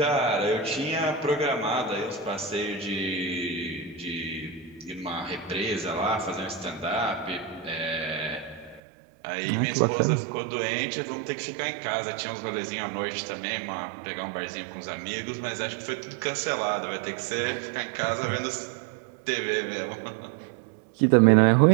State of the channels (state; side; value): drops out; left; at 8.8 s